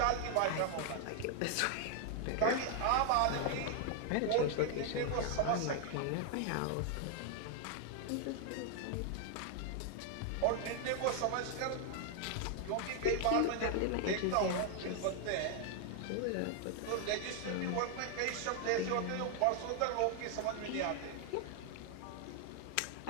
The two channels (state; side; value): different; both; correlation 0.00